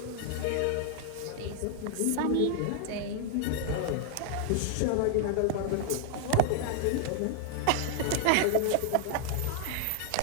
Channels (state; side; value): different; both; correlation 0.00